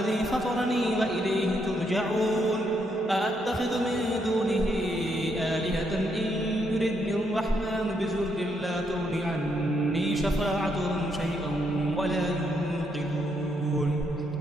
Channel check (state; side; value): normal; both; correlation 0.76